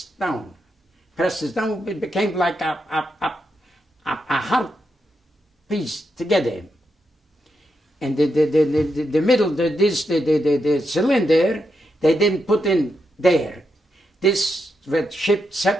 down. It became like a hard piece together. And the middle, the cylinder, they didn't put in there. This was shipped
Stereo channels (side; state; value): both; normal; correlation 0.84